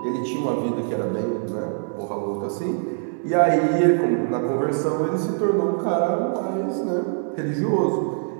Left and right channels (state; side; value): silent; left; digital silence